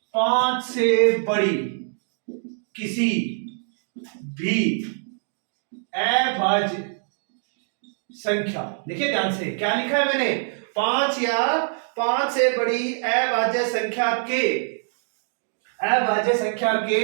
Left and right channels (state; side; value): silent; left; digital silence